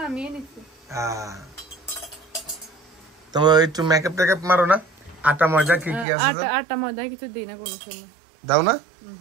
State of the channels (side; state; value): left; drops out; at 6.1 s